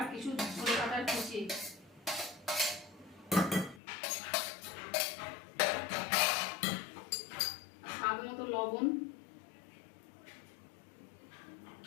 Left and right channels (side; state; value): right; drops out; at 3.8 s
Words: কিছু ধনে পাতার কুচি, স্বাদ মতো লবণ,